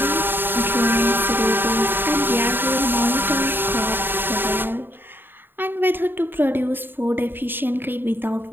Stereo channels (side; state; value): left; late; 0.097 ms